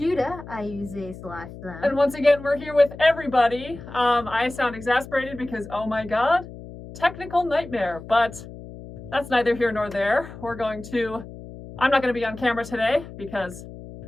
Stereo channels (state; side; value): noise; left; hum, 14 dB below the sound